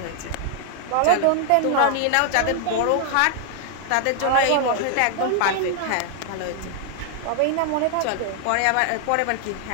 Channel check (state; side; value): different; both; correlation 0.00